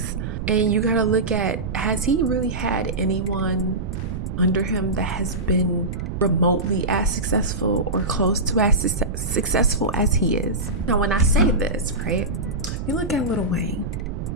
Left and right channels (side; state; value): right; noise; rumble, 5 dB below the sound